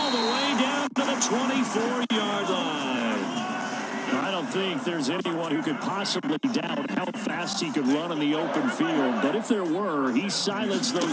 the way down to the 24-yard line. I don't think there's anyone who could possibly doubt how fast he could run in the open field. But if there were, he silenced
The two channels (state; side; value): identical; both; correlation 1.00